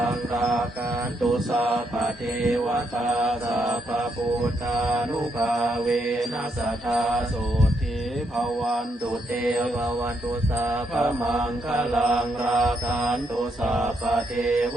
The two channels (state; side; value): normal; both; correlation 0.77